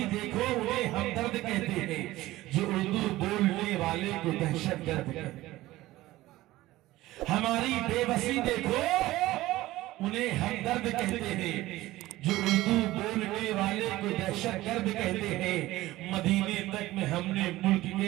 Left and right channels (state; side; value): quieter; left; 17.1 dB